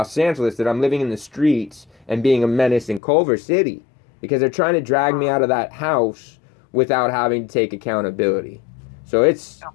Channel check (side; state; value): right; drops out; at 3.0 s